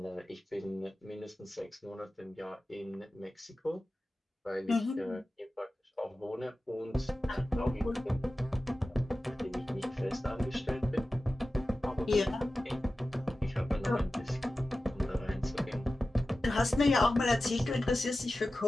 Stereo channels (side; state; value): both; normal; correlation 0.95